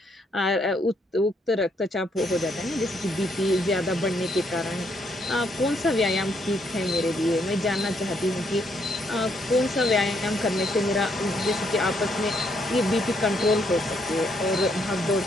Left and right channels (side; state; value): both; normal; correlation 0.73